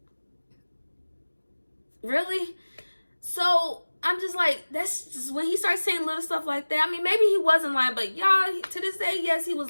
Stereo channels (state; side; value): inverted; both; correlation -1.00